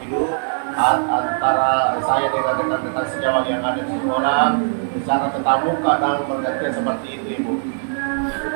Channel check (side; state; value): left; silent; 66 dB below the other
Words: antara saya dengan rekan-rekan sejawat yang ada di sekolah secara tetap muka dan bergantian seperti itu Ibu.